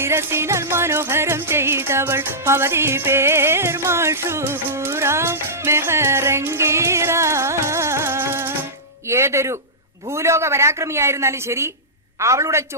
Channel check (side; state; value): both; normal; correlation -0.15